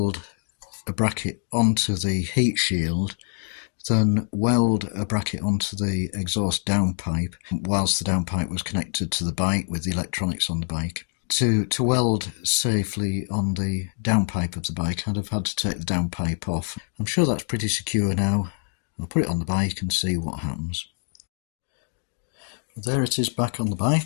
a bracket onto the heat shield than weld a bracket onto the exhaust downpipe whilst the downpipe was connected to the bike with the electronics on the bike. to weld safely on the downpipe of the bike, I'd have had to take the downpipe off. I'm sure that's pretty secure now. I'll put it on the bike and see what happens. There it is back on the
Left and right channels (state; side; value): silent; right; 62 dB below the other